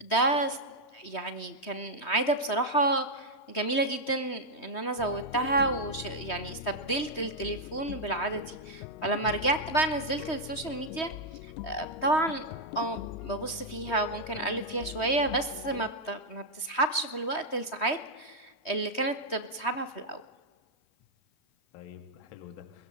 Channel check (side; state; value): right; late; 3.2 ms